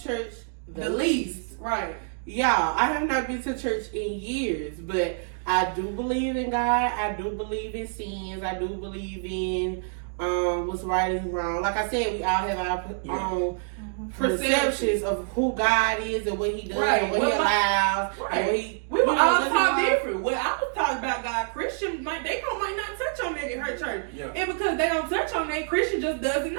church the least. Right. Y'all, I have not been to church in years, but I do believe in God. I do believe in sins. I do believe in what's right and wrong. Like I said, we all have our own perceptions of who God is and what He does and what He allows. And what he, we were all taught different. Well, I was taught about God. Christian, might not touch on that in her church. Yeah. And because they don't touch on that, Christian just doesn't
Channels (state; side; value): silent; left; digital silence